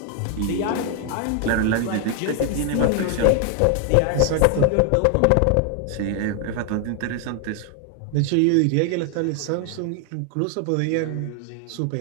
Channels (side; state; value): both; different; correlation 0.00